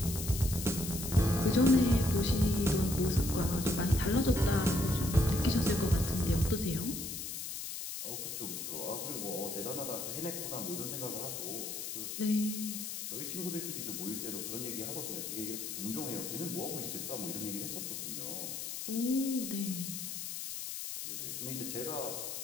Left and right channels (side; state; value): left; noise; hiss, 6 dB below the sound